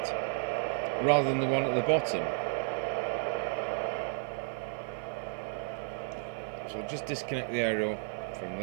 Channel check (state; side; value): silent; left; 56 dB below the other